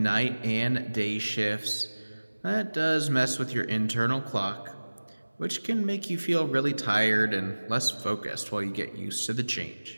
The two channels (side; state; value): both; inverted; correlation -1.00